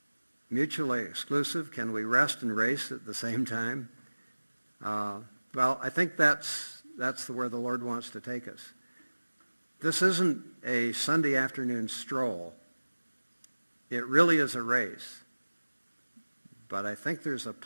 mutually exclusive? Can we rest and race at the same time? Well, I think that's where the Lord wants to take us. This isn't a Sunday afternoon stroll. It really is a race. But I think there's a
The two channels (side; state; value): both; inverted; correlation -1.00